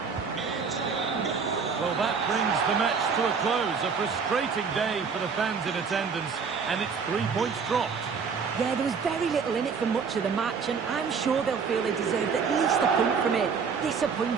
Well, that brings the match to a close. A frustrating day for the fans in attendance, and it's 3 points dropped. Yeah, there was very little in it for much of the match, and I'm sure they'll feel they deserved at least a point from it.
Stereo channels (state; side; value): quieter; left; 5.7 dB